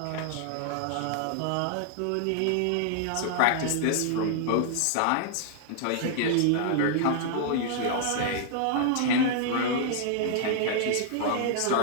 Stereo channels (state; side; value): different; both; correlation -0.01